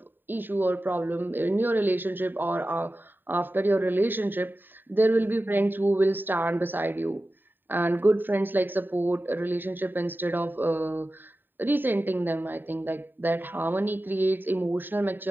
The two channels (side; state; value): left; late; 0.093 ms